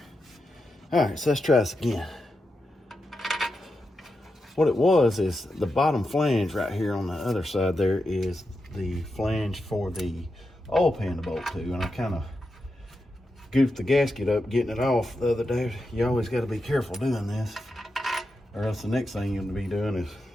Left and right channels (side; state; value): both; normal; correlation 0.88